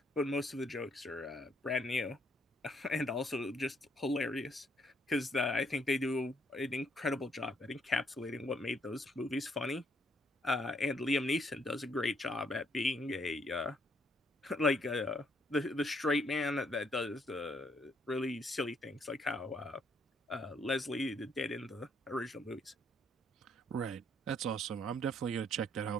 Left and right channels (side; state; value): both; normal; correlation 0.70